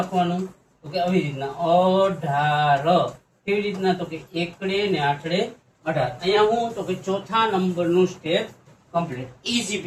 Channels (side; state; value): both; identical; correlation 1.00